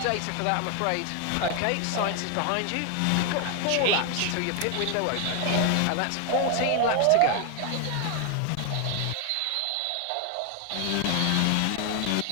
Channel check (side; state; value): both; different; correlation 0.00